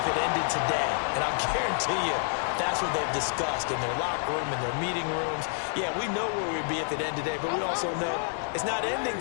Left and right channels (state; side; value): silent; right; digital silence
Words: it ended today. And I'll guarantee you, that's what they've discussed in their locker room, in their meeting rooms. Yeah, we know where we'd be if it ended today, but we also know it's not ending